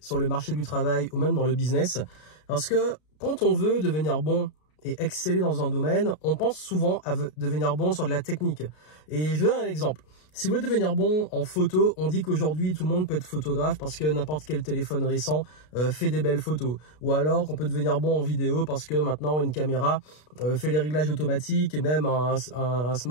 sur le marché du travail ou même dans le business. Parce que quand on veut devenir bon et exceller dans un domaine, on pense souvent à devenir bon sur de la technique. Et je vous donne un exemple. Si vous voulez devenir bon en photo, on dit qu'aujourd'hui tout le monde peut être photographe parce que n'importe quel téléphone récent fait des belles photos. Ou alors qu'on peut devenir bon en vidéo parce que maintenant une caméra fait les réglages automatiques et même un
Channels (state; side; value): late; right; 33 ms